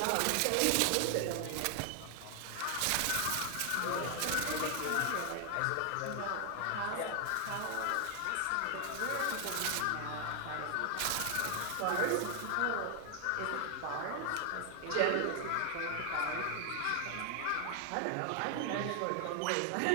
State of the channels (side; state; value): both; different; correlation 0.00